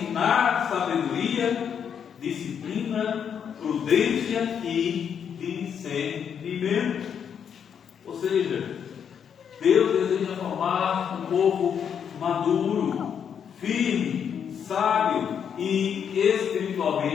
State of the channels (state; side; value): quieter; right; 7.8 dB